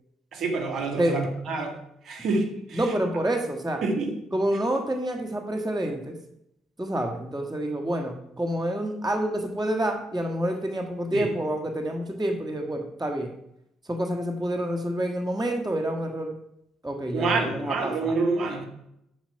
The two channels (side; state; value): both; normal; correlation 0.81